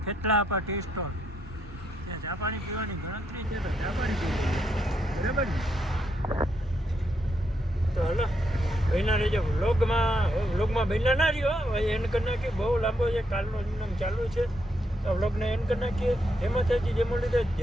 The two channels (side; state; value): both; normal; correlation 0.78